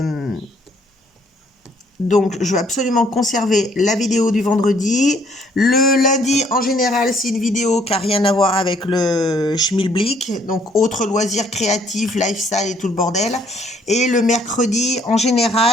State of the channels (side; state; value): both; normal; correlation 0.64